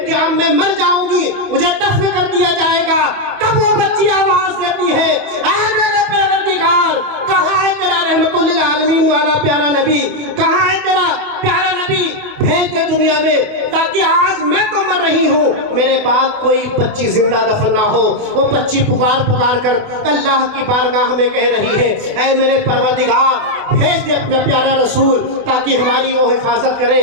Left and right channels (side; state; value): left; late; 28 ms